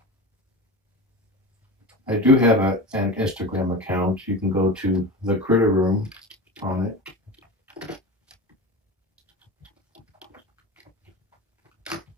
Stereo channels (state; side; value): normal; both; correlation 0.28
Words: I do have an Instagram account. You can go to the Critter Room on it.